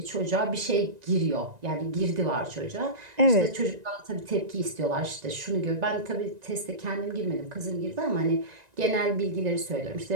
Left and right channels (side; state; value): left; late; 1.9 ms